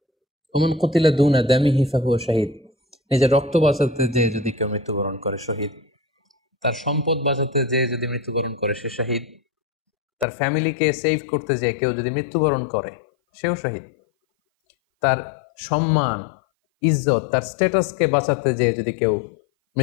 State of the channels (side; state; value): right; drops out; at 10.2 s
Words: ওমান কুতিলা দুনা দামিহি ফাহুয়া শাহীদ, নিজের রক্ত বাঁচাতে যেয়ে যদি কেউ মৃত্যুবরণ করে শহীদ। তার সম্পদ বাঁচাতে যেয়ে যদি মৃত্যুবরণ করে সে শহীদ। তার ফ্যামিলিকে সেভ করতে যেয়ে কেউ যদি মৃত্যুবরণ করে সেও শহীদ। তার সম্মান, ইজ্জত, তার স্ট্যাটাসকে বাঁচাতে যেয়ে যদি কেউ